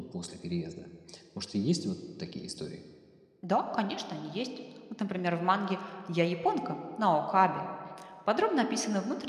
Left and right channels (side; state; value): both; identical; correlation 1.00